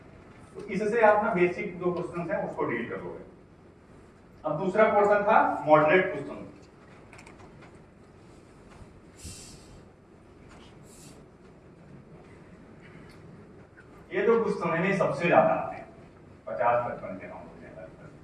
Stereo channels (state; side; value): identical; both; correlation 1.00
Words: तो इससे आप ना बेसिक जो क्वेश्चन है उसको डील कर लोगे। अब दूसरा पोर्शन था मॉडरेट क्वेश्चन। ये जो क्वेश्चन है ना सबसे ज्यादा आते हैं, 50-55 के नंबर हैं।